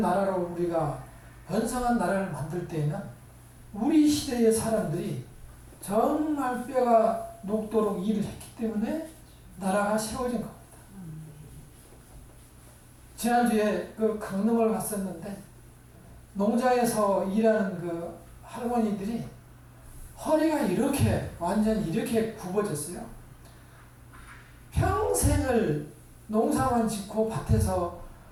나라로 우리가 번성한 나라를 만들 때에는 우리 시대의 사람들이 정말 뼈가 녹도록 일을 했기 때문에 나라가 세워진 겁니다. 지난주에 그 강릉을 갔었는데 농장에서 일하는 그 할머니들이 허리가 완전 이렇게 굽어졌어요. 평생을 농사만 짓고 밭에서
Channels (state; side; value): identical; both; correlation 1.00